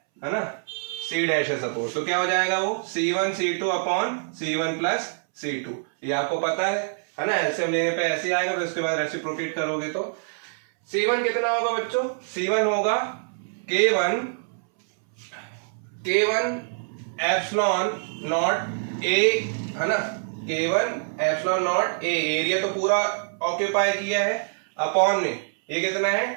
ना, C' है सपोज, तो क्या हो जाएगा वो C1 C2 upon C1 plus C2, ये आपको पता है ना। एलसीएम लेने पे ऐसे ही आएगा, फिर उसके बाद रेसिप्रोकेट करोगे तो C1 कितना होगा बच्चों, C1 होगा K1 एप्सिलॉन नॉट ए, है ना, K1 epsilon not a, area तो पूरा ऑक्यूपाई किया है, अपॉन में ये कितना है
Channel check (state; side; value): silent; left; 62 dB below the other